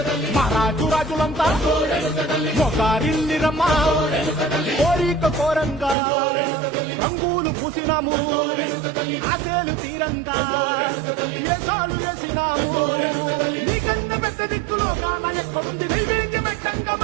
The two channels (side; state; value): left; drops out; at 6.0 s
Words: మహారాజు రాజులంతా మొగారిల్లిరమ్మా కోరిక కోరంగా రంగులు పూసినాము ఆశలు తీరంగా వేషాలు వేసినాము నీకన్నా పెద్ద దిక్కులో కాల ఎక్కడుంది నైవేద్యం ఎట్టంగా